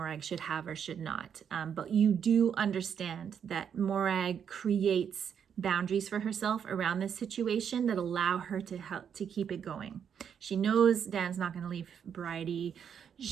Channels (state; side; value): quieter; left; 7.9 dB